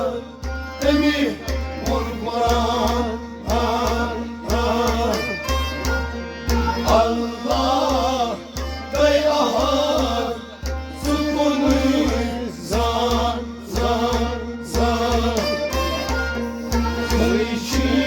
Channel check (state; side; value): identical; both; correlation 1.00